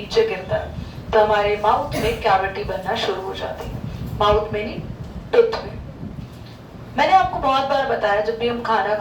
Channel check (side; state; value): both; identical; correlation 1.00